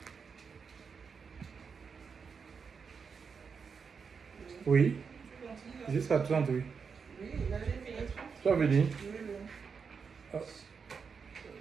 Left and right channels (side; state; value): left; quieter; 5.8 dB